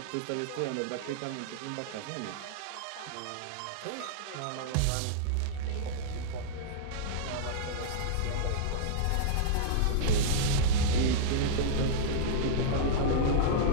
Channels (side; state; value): both; different; correlation -0.02